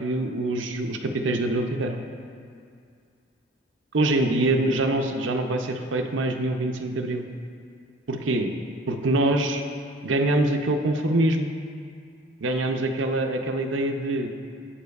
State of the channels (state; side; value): normal; both; correlation 0.46